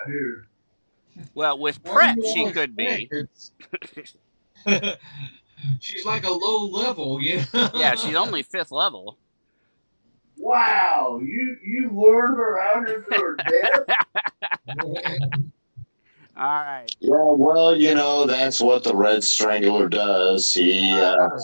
here. Well, with What prep, do you she all could be. She's like a low level, you know? Yeah, she's only 5th level. Wow, you lured her out here to her death? All right. Yeah, well, you know, that's what the Red Strangler does. He, I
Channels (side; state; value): both; inverted; correlation -1.00